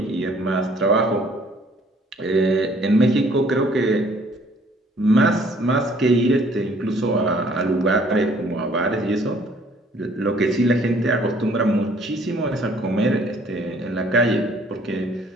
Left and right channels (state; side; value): normal; both; correlation 0.59